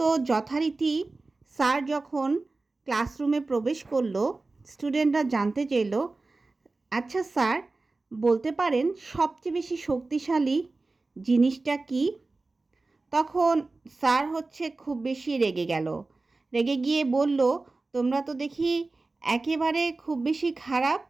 যথারীতি স্যার যখন ক্লাসরুমে প্রবেশ করলো, স্টুডেন্টরা জানতে চাইল, আচ্ছা স্যার বলতে পারেন সবচেয়ে বেশি শক্তিশালী জিনিসটা কি? তখন স্যার খুব বেশি রেগে গেল। রেগে গিয়ে বলল, তোমরা তো দেখি একেবারে খুব বেশি খারাপ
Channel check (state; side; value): quieter; left; 3.4 dB